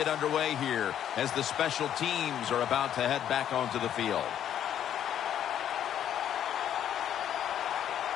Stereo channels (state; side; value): quieter; right; 10.2 dB